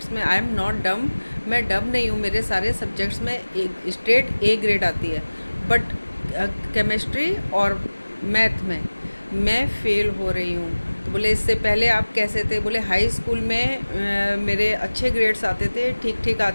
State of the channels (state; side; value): inverted; both; correlation -1.00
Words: में आई एम नॉट डम, मैं डम नहीं हूँ, मेरे सारे सब्जेक्ट्स में स्ट्रेट ए ग्रेड आती है, बट केमिस्ट्री और मैथ में मैं फ़ेल हो रही हूँ। तो बोले इससे पहले आप कैसे थे? बोले हाई स्कूल में मेरे अच्छे ग्रेड्स आते थे, ठीक ठीक